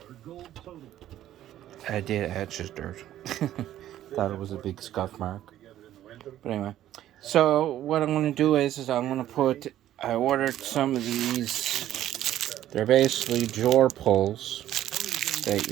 did. I just dirt. Thought it was a big scuff mark. But anyway, so what I'm going to do is I'm going to I ordered some of these, they're basically drawer pulls that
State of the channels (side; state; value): left; quieter; 12.6 dB